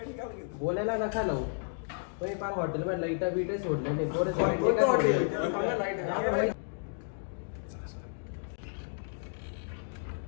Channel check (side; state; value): right; silent; digital silence